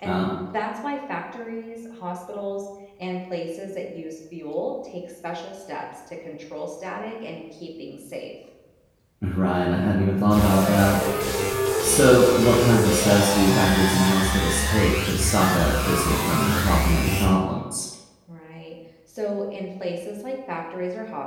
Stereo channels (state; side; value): identical; both; correlation 1.00